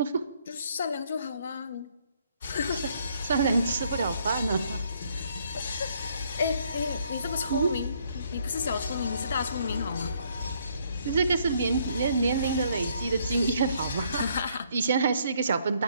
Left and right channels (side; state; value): both; inverted; correlation -0.68